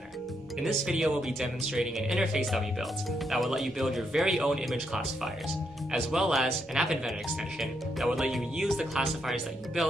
In this video, we'll be demonstrating an interface that we built that will let you build your very own image classifiers, as well as an App Inventor extension that will let you use the classifiers that you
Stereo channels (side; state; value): both; normal; correlation 0.79